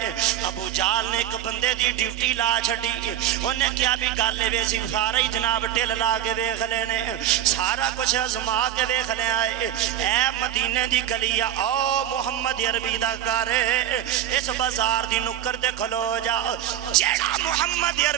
ہے۔ ابو جہل نے ایک بندے دی ڈیوٹی لا چھڑی انہیں کیا بھی گالے ویسی سارا ہی جناب ٹل لا کے ویکھ لینے سارا کچھ ازما کے ویکھ لے آئے اے مدینے دی گلیا او محمد عربی دا گھر اس بازار دی نکر دے کھلو جا جیڑا محمد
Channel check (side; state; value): left; quieter; 11.3 dB